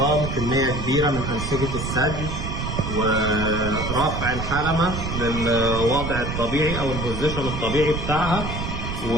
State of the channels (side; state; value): right; noise; rumble, 4 dB below the sound